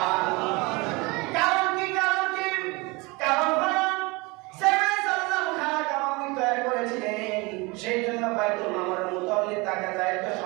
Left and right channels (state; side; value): quieter; left; 25.6 dB